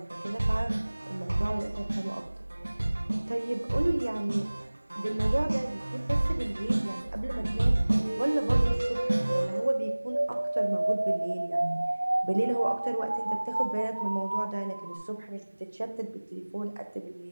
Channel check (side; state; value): both; inverted; correlation -1.00